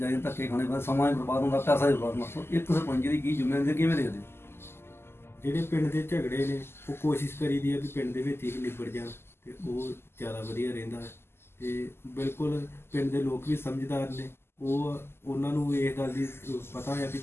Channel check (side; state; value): right; late; 0.12 ms